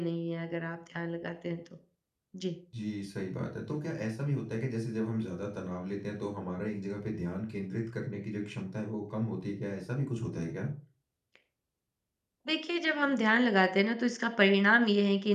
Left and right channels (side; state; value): both; identical; correlation 1.00